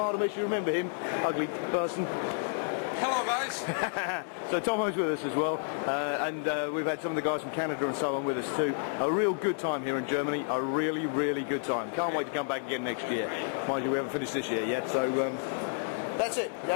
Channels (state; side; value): silent; right; digital silence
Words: You remember him? Ugly person. Hello guys. So Tomo's with us as well, and we've had some of the guys from Canada and so on with us too. A real good time here in Germany, a really good time. Can't wait to come back again next year. Mind you, we haven't finished this year yet, so That's it,